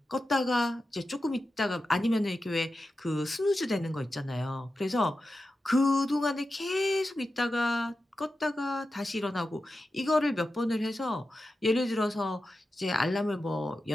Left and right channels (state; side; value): normal; both; correlation 0.91